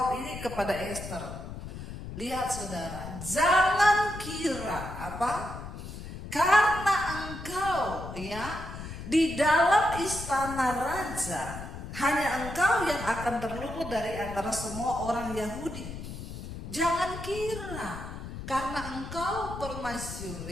ini kepada Esther. Lihat saudara, jangan kira apa? Karena engkau ya di dalam istana raja, hanya engkau yang akan terluput dari antara semua orang Yahudi. Jangan kira karena engkau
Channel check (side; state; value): left; noise; rumble, 10 dB below the sound